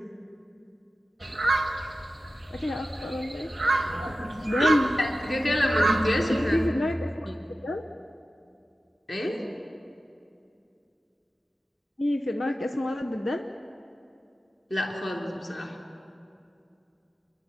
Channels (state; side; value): normal; both; correlation 0.94